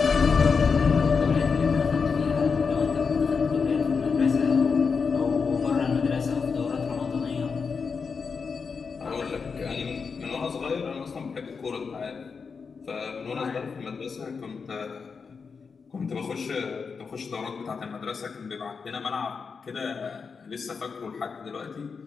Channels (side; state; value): right; quieter; 5.4 dB